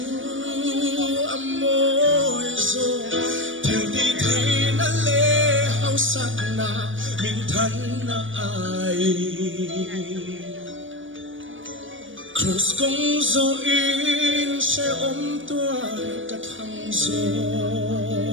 amoi zo theo đi thế na le hao sát na mình thân na ai cross công zo in sẽ ôm tuar cả thăng zo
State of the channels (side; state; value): left; late; 0.57 ms